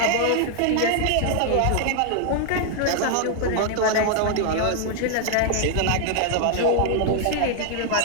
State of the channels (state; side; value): different; both; correlation 0.00